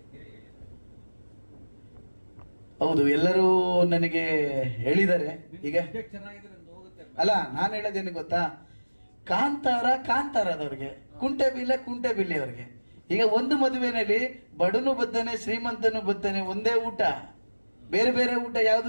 ಹೌದು, ಎಲ್ಲರೂ ನನಗೆ ಹೇಳಿದ್ದಾರೆ. ಈಗ ಅಲ್ಲ, ನಾನು ಹೇಳೋದೇನು ಗೊತ್ತಾ, ಕಾಂತಾರದವ್ರಿಗೆ, ಕುಂಟೆಬಿಲ್ಲೆ ಅವ್ರಿಗೆ. ಈಗ ಒಂದು ಮದುವೆನಲ್ಲಿ ಬಡನು ಬದ್ದಾನೆ, ಶ್ರೀಮಂತನು ಬದ್ದಾನೆ, ಒಂದೇ ಊಟ, ಬೇರೆ ಬೇರೆ ಊಟ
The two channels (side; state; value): both; inverted; correlation -1.00